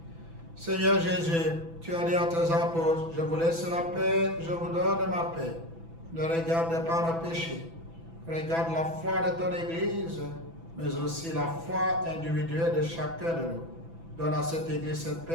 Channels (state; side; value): late; left; 6.0 ms